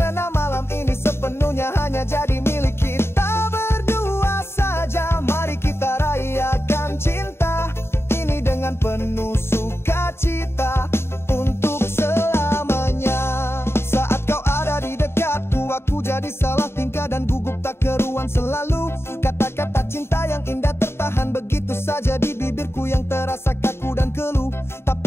malam ini sepenuhnya hanya jadi milik kita berdua saja. Mari kita rayakan cinta ini dengan penuh sukacita untuk selamanya. Saat kau ada di dekatku, aku jadi salah tingkah dan gugup tak keruan selalu. Kata-kata cinta yang indah tertahan begitu saja di bibirku yang terasa kaku dan keluh.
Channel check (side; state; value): right; late; 0.12 ms